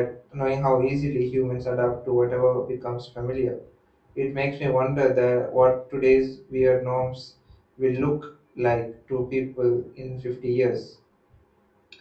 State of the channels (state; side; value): identical; both; correlation 1.00